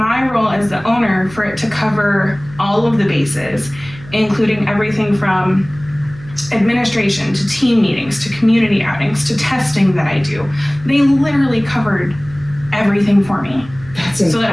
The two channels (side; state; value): right; noise; hum, 18 dB below the sound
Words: role as the owner, for it to cover all of the bases, including everything from administration to team meetings to community outings to testing that I do, they literally covered everything for me. That's incredible. So